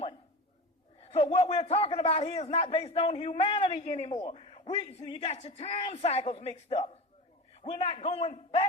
So what we're talking about here is not based on humanity anymore. So you got your time cycles mixed up. We're not going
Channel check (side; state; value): both; normal; correlation 0.29